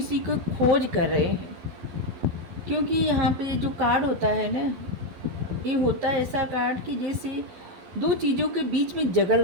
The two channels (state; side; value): late; left; 12 ms